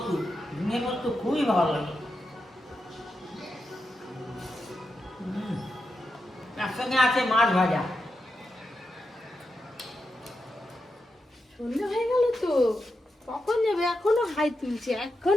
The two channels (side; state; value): both; normal; correlation 0.88